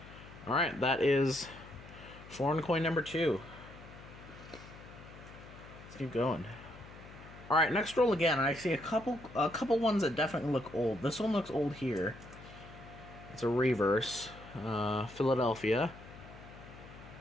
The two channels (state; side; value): noise; left; hum, 17 dB below the sound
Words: Alright, that is foreign coin number 2. Let's keep going. Alright, next roll again. I see a couple ones that definitely look old. This one looks old here. It's a reverse. Philadelphia.